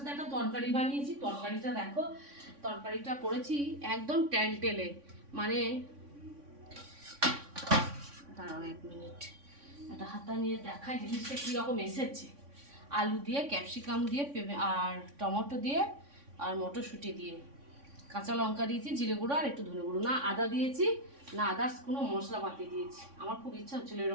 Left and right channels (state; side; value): late; left; 3.6 ms